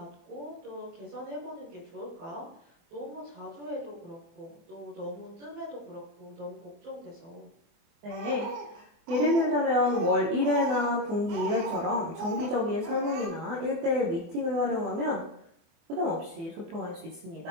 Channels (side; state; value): left; late; 24 ms